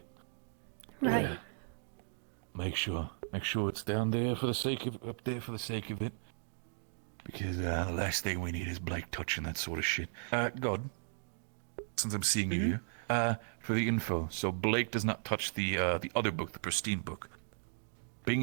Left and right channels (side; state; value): left; silent; digital silence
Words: Right. Make sure it's down there for the sake of up there for the sake of it. Because the last thing we need is Blake touching that sort of shit. God, since I'm seeing you here, for the info. So Blake does not touch the other book, the pristine book. Bing